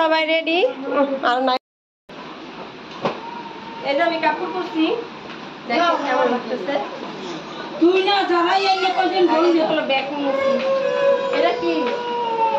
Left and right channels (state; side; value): identical; both; correlation 1.00